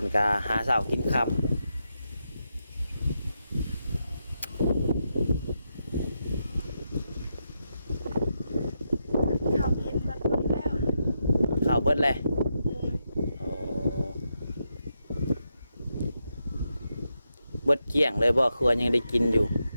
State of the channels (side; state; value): both; inverted; correlation -0.85